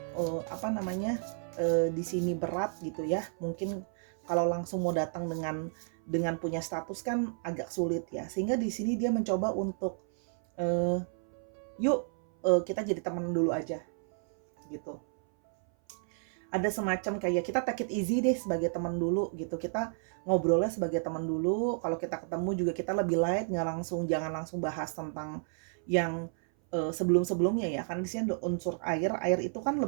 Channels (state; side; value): silent; left; 57 dB below the other